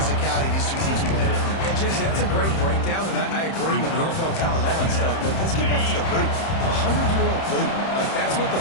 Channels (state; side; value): late; right; 30 ms